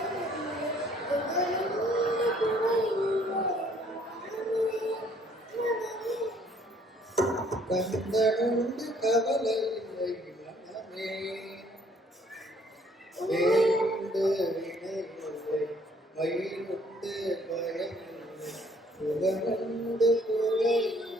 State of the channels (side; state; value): both; normal; correlation 0.62